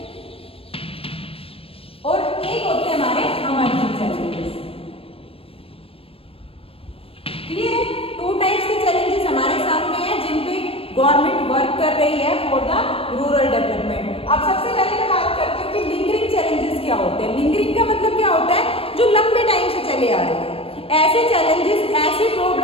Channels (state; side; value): late; right; 0.28 ms